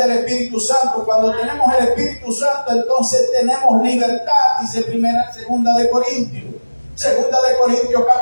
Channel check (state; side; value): inverted; both; correlation -1.00